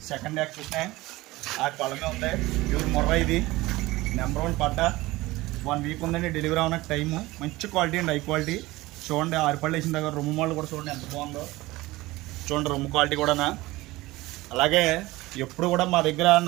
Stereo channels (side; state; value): left; quieter; 19.4 dB